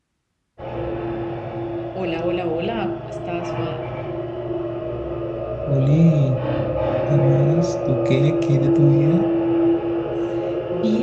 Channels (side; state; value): both; identical; correlation 1.00